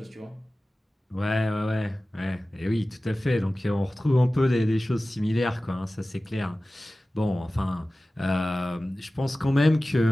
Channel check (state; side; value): normal; both; correlation 0.96